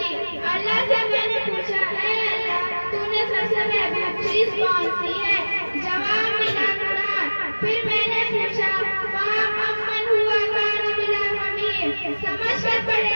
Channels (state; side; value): inverted; both; correlation -1.00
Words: اللہ سے میں نے پوچھا اے اللہ تو نے سب سے محبوب چیز کون سی ہے؟ جواب ملا قرآن۔ پھر میں نے پوچھا امن ہوا کان بلا ممیم، سمجھ کر پڑھے